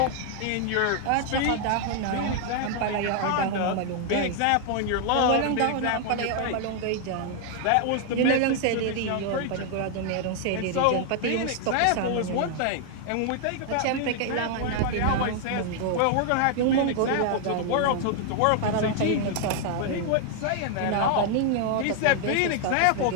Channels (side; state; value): both; different; correlation 0.00